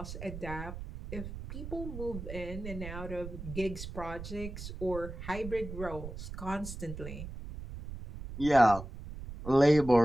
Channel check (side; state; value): right; noise; rumble, 10 dB below the sound